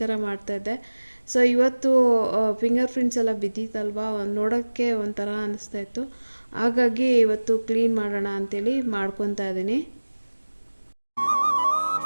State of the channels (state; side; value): inverted; both; correlation -1.00